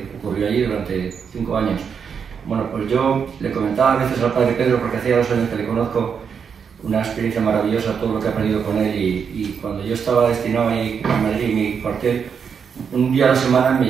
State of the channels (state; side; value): quieter; left; 6.7 dB